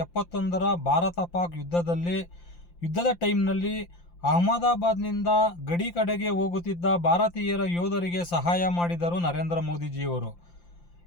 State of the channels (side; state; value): right; late; 5.8 ms